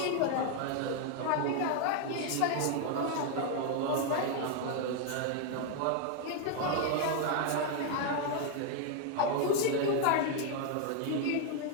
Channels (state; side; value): different; both; correlation 0.00